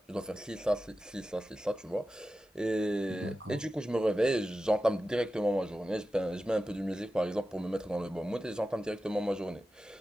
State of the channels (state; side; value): normal; both; correlation 0.93